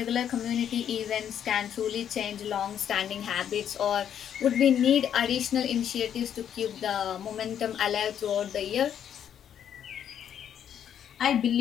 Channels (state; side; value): quieter; right; 9.3 dB